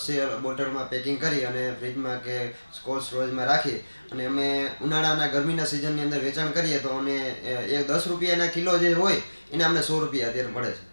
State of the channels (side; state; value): both; inverted; correlation -1.00